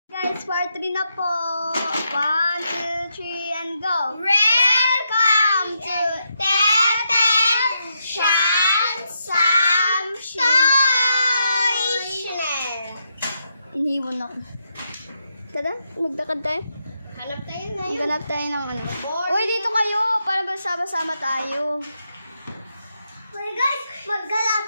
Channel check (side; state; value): both; inverted; correlation -0.81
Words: Guys, part 3 na po. 1, 2, 3, and go. Welcome to Teten Sam Channel. Iniwan ako. Tara, maglakad tayo. Hanap tayo ngayon. Maghanap tayo ng ano. Uy, dito kayo. Para sama-sama tayo. Uy guys, maggala